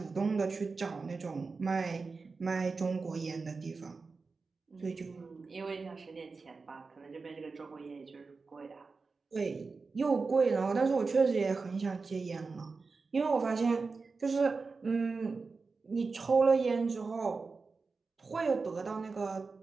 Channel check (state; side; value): quieter; left; 4.3 dB